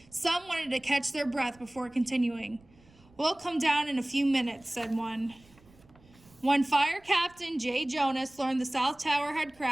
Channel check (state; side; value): noise; right; rumble, 28 dB below the sound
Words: Some wanted to catch their breath before continuing. We'll come down in a few minutes, said one. When Fire Captain Jay Jonas learned the South Tower had